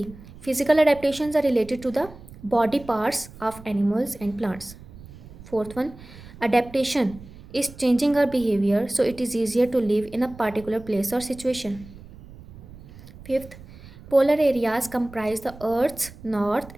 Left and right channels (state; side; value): noise; right; rumble, 18 dB below the sound